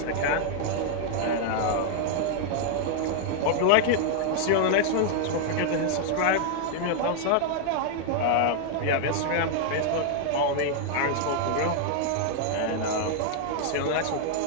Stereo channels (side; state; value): both; different; correlation 0.00